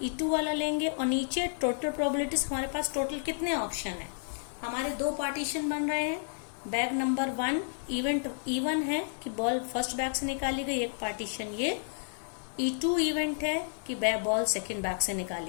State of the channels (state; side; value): silent; right; 55 dB below the other